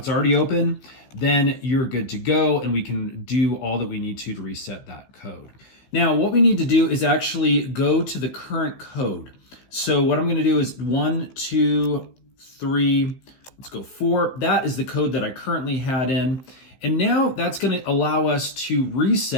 already open, then you're good to go and we can do all that we need to reset that code. Now, what we need to do is actually go to the current code. So what I'm going to do is 1, 2, 3, let's go 4. That is the code that I currently had in. And now that's going to allow us to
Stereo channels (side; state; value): right; late; 15 ms